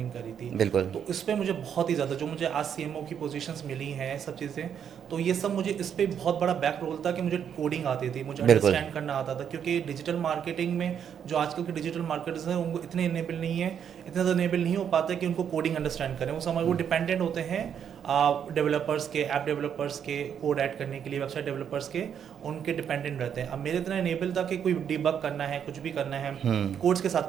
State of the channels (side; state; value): left; quieter; 8.3 dB